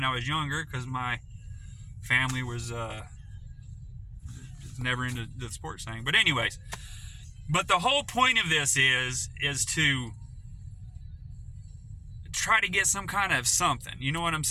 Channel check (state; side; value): identical; both; correlation 1.00